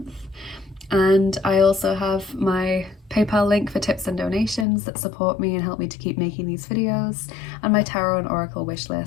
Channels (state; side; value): drops out; right; at 4.7 s